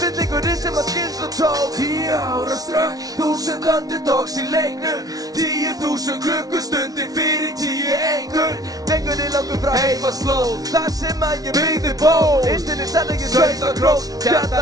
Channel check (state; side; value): late; left; 0.18 ms